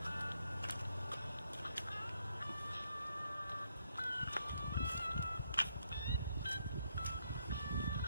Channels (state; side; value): inverted; both; correlation -0.76